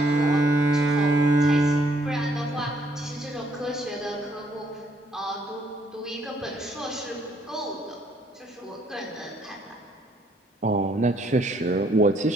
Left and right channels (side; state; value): both; normal; correlation 0.68